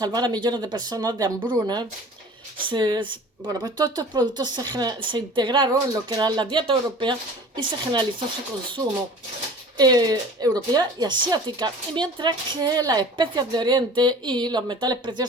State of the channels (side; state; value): both; normal; correlation 0.43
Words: a millones de personas de hambruna. Bueno, pues todos estos productos se integraron en lo que era la dieta europea y se generalizó su consumo europea y asiática. Y mientras que las especias de Oriente y los metales